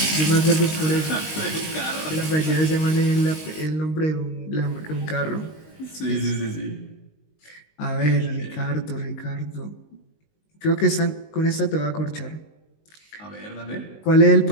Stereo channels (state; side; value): late; right; 19 ms